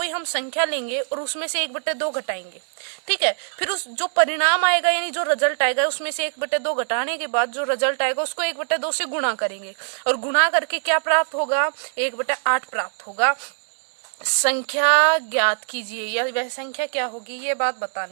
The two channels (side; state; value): left; silent; digital silence